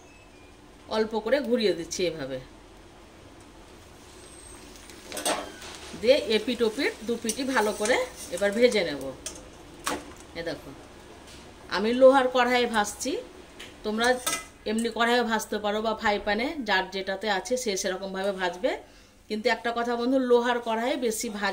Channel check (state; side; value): identical; both; correlation 1.00